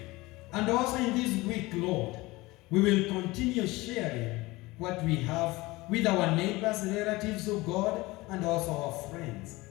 And also in this week, Lord, we will continue sharing what we have with our neighbors, relatives of God, and also our friends.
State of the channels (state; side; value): quieter; right; 21.1 dB